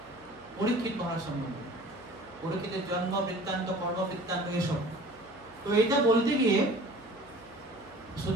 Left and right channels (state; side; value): noise; right; hum, 27 dB below the sound